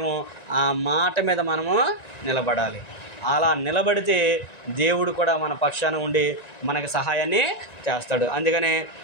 ఆ మాట మీద మనము నిలబడాలి. అలా నిలబడితే దేవుడు కూడా మన పక్షాన ఉండి మనకి సహాయాన్ని చేస్తాడు. అందుకనే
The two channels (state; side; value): late; right; 1.9 ms